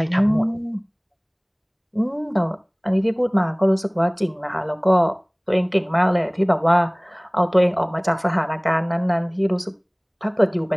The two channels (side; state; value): both; identical; correlation 1.00